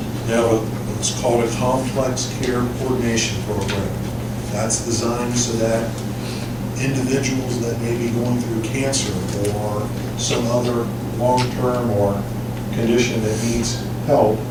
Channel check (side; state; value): both; identical; correlation 1.00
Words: They have what's called a complex care coordination program. That's designed so that individuals that may be going through cancer or some other long-term or condition that needs help,